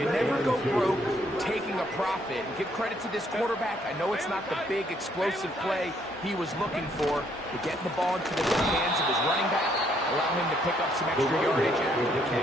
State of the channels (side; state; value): both; normal; correlation 0.69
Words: never go broke taking a profit. And give credit to this quarterback. I know it's not the big explosive play he was looking for, but getting the ball into the hands of his running back, allow him to pick up some extra yardage after the